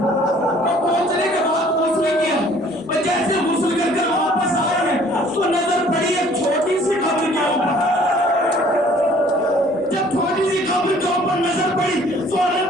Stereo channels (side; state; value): both; normal; correlation 0.56